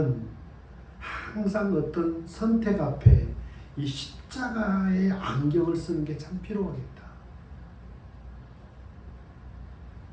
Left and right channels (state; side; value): identical; both; correlation 1.00